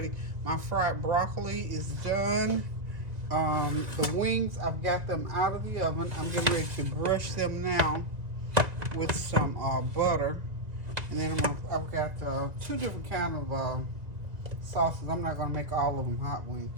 My fried broccoli is done. The wings, I've got them out of the oven. I'm getting ready to brush them now with some butter. And then I've got 2 different kinds of sauces. I'm not going to make all of them hot wings.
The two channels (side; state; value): left; late; 1.9 ms